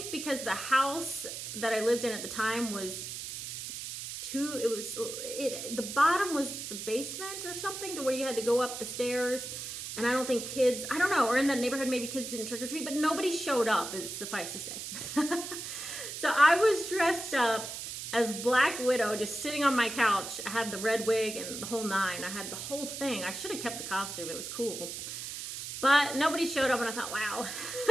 because the house that I lived in at the time was the bottom was the basement or something, to where you had to go up the stairs, and I don't think kids, I don't know, or in that neighborhood maybe kids didn't trick or treat, but nobody showed up, is suffice to say. So I was dressed up as Black Widow, just sitting on my couch. I had the red wig and the whole nine. I had the whole thing. I should have kept the costume. It was cool. But nobody showed up, and I thought, wow,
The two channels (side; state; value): right; noise; hiss, 7 dB below the sound